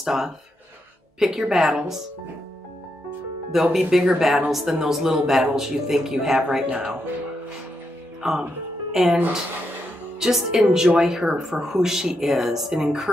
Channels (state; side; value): normal; both; correlation 0.82